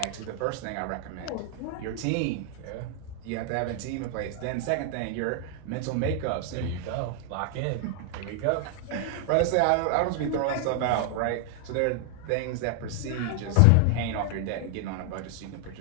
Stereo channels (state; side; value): different; both; correlation 0.00